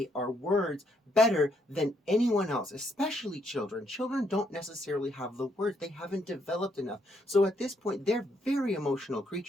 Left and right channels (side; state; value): both; normal; correlation 0.73